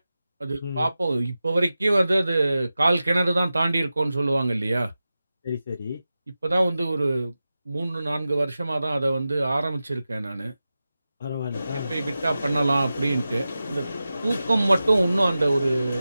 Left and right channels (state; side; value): inverted; both; correlation -0.94